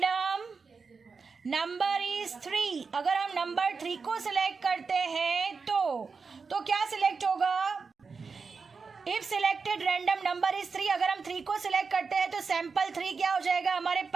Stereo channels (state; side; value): quieter; left; 4.9 dB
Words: number is 3. अगर हम नंबर 3 को सिलेक्ट करते हैं तो क्या सिलेक्ट होगा? If selected random number is 3, अगर हम 3 को सिलेक्ट करते हैं तो सैंपल 3 क्या हो जाएगा हमारे